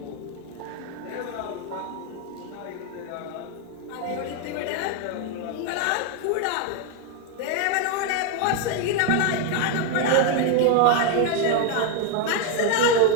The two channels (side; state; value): both; different; correlation 0.01